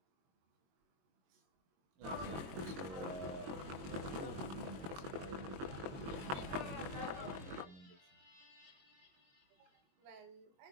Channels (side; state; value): left; late; 22 ms